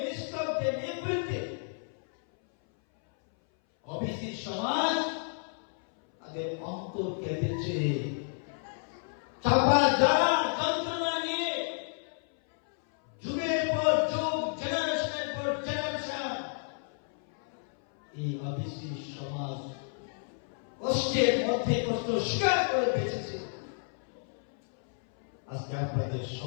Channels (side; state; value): right; silent; 57 dB below the other